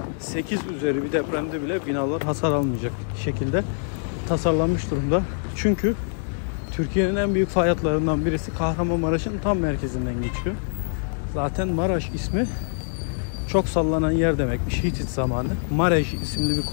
8 üzeri bir depremde bile binalar hasar almayacak şekilde tasarlanmış durumda. Çünkü Türkiye'nin en büyük fay hatlarından birisi Kahramanmaraş'ın tam merkezinden geçiyor. Zaten Maraş ismi çok sallanan yer demekmiş Hitit zamanı. Marej isimli bir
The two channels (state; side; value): silent; right; digital silence